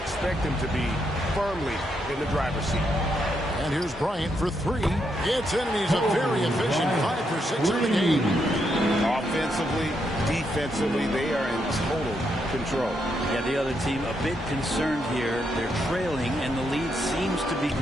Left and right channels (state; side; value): normal; both; correlation 0.79